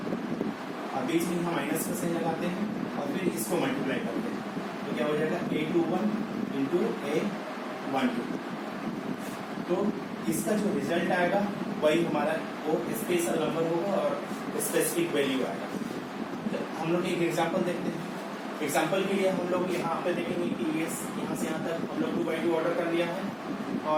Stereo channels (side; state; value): both; identical; correlation 1.00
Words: और बीच में हम माइनस का साइन लगाते हैं और फिर इसको मल्टीप्लाई करते हैं तो क्या हो जाएगा A21 इंटू A12। तो इसका जो रिजल्ट आएगा वही हमारा वो स्पेशल नंबर होगा और स्पेसिफिक वैल्यू आएगा। हम लोग एक एग्जांपल देखते हैं। एग्जांपल के लिए हम लोग यहाँ पे देखेंगे कि यहाँ से यहाँ तक हम लोग 2x2 ऑर्डर कर लिया है